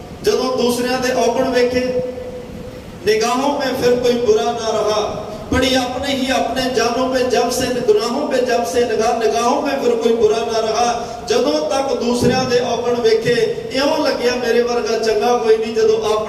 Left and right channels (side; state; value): both; identical; correlation 1.00